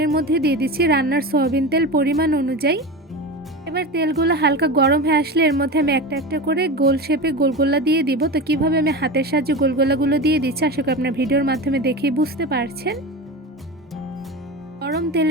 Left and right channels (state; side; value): normal; both; correlation 0.25